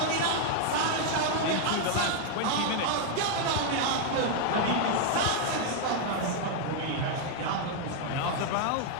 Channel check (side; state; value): both; different; correlation 0.00